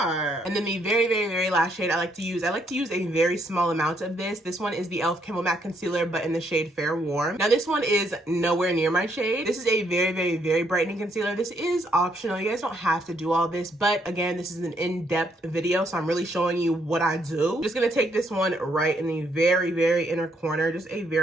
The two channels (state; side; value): normal; both; correlation 0.72